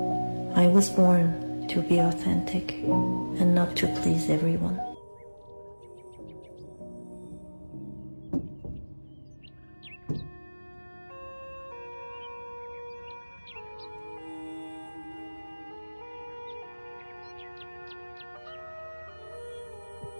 I was born to be authentic and not to please everyone.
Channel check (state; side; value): inverted; both; correlation -1.00